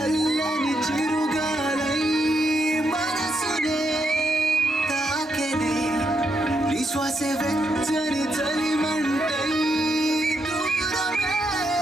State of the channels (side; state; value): both; normal; correlation 0.80